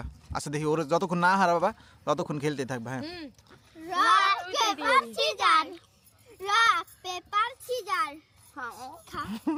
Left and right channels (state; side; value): identical; both; correlation 1.00